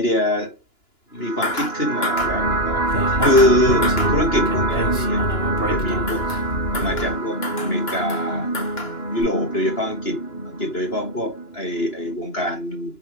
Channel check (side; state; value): right; late; 2.9 ms